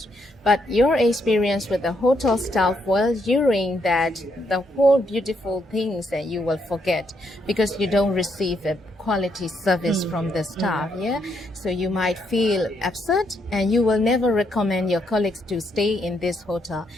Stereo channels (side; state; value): both; normal; correlation 0.75